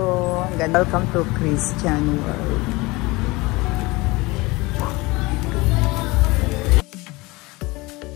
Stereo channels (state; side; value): quieter; right; 22.9 dB